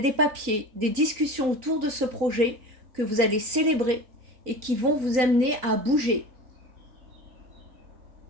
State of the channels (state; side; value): late; left; 3.9 ms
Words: des papiers, des discussions autour de ce projet que vous allez célébrer et qui vont vous amener à bouger.